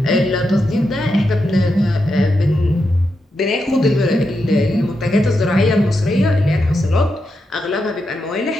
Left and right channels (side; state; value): both; normal; correlation 0.86